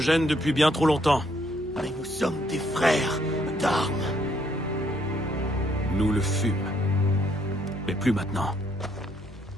depuis bien trop longtemps. Mais nous sommes des frères d'armes. Nous le fûmes. Mais plus maintenant.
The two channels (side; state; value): both; normal; correlation 0.70